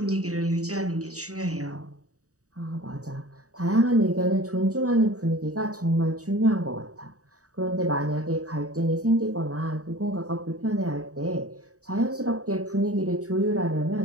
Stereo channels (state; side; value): late; left; 0.66 ms